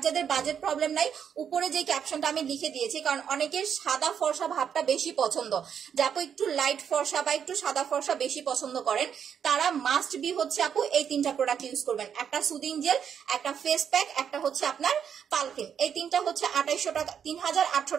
যাদের বাজেট প্রবলেম নাই, উপরে যে ক্যাপশনটা আমি লিখে দিয়েছি, কারণ অনেকের সাদা ফর্সা ভাবটা বেশি পছন্দ, যে আপু একটু লাইট ফর্সা বা একটু সাদা ফর্সা বেশি পছন্দ করেন, তারা মাস্ট বি হচ্ছে আপু এই 3টা প্রোডাক্ট ইউজ করবেন। একটা সুদিং জেল, একটা ফেস প্যাক, একটা হচ্ছে আপনার পাল ক্রিম। এই 3টা হচ্ছে 2800 টাকা, 3800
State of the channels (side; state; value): left; quieter; 8.0 dB